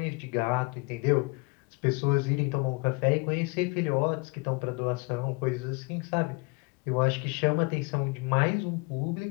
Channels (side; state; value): right; quieter; 28.6 dB